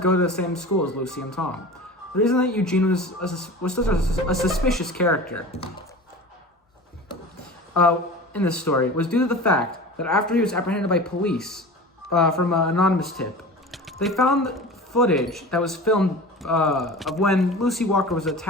to the same school as Lucy and Tom. The reason that Eugene was such a suspicious character in this story was due to the fact that after he was apprehended by police from an anonymous tip, they found footage that was filmed of when Lucy Walker was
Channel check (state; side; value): normal; both; correlation 0.35